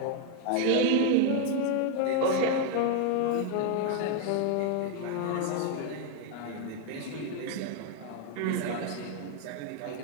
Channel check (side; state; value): both; different; correlation 0.01